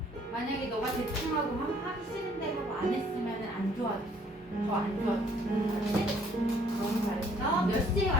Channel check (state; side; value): normal; both; correlation 0.61